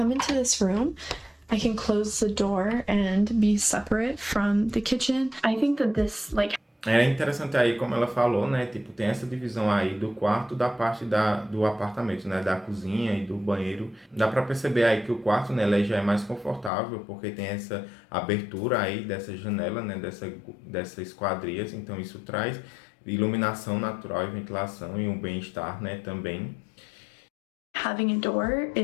into this room, I can close the door and be separate from the kitchen. I think that this, like... É interessante aí, como ela falou, né, tipo, tem essa divisão aí do quarto da parte do apartamento, né, da cozinha e do banheiro. Dá pra perceber aí que o quarto, né, ele já é mais confortável, porque tem essa abertura aí dessa janela, né, dessas esquadrias, então isso traz iluminação natural e ventilação e um bem-estar, né, também. Having a door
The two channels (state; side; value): drops out; right; at 16.7 s